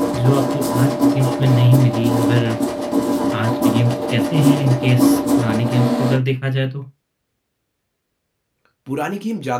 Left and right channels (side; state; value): both; identical; correlation 1.00